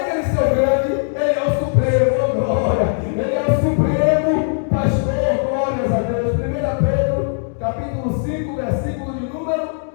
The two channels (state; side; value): silent; right; digital silence